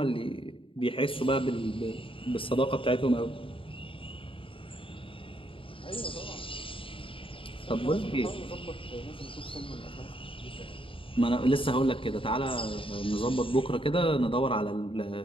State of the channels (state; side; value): late; right; 0.26 ms